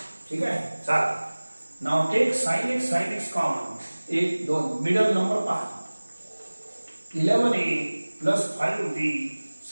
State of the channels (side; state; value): both; inverted; correlation -1.00